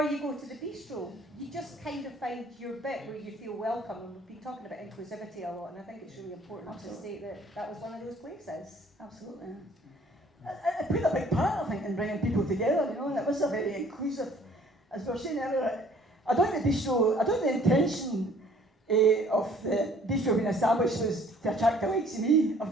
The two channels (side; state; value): both; normal; correlation 0.56